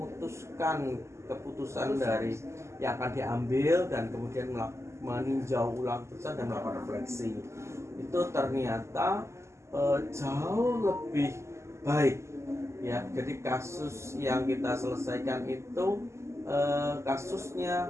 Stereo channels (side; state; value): left; late; 0.13 ms